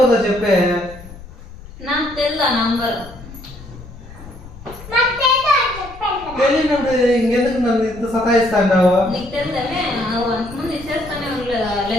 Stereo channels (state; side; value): noise; left; rumble, 17 dB below the sound